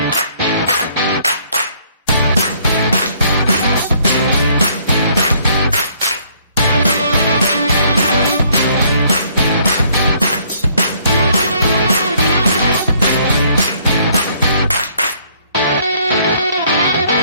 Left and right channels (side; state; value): both; inverted; correlation -0.63